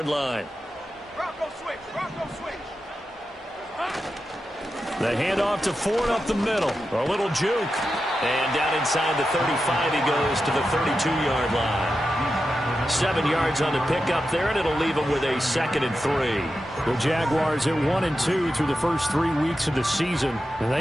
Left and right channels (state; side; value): normal; both; correlation 0.90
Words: line. Rocco switch, Rocco switch. The handoff to Ford up the middle. A little juke. And down inside the 35, he goes to the 32-yard line. 7 yards on the pickup there, and it'll leave him with a 2nd and 3. The Jaguars at 1-2 through the first 3 weeks of the season. And